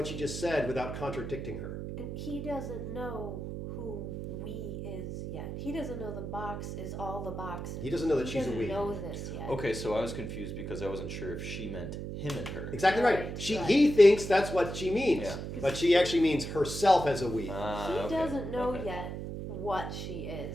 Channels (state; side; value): noise; right; hum, 6 dB below the sound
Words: she just said without contradicting her. And he doesn't know who we is yet. He doesn't know the box is all the boxes. He doesn't know that she's a we. He doesn't know this yet. Okay, so I was confused because I wasn't sure if she meant him and her. Exactly right. Right, He thinks that's what she means, Yeah. but she actually means herself as a we. He Okay, doesn't know okay. yet what she is.